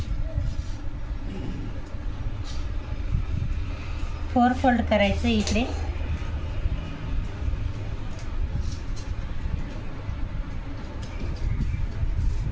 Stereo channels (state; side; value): identical; both; correlation 1.00